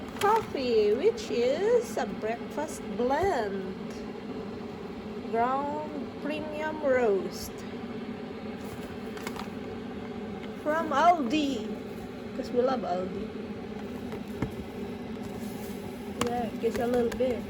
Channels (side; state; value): both; identical; correlation 1.00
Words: coffee, which is a breakfast blend. Ground premium roast. From Aldi. Because we love Aldi. Yeah, just a little bit.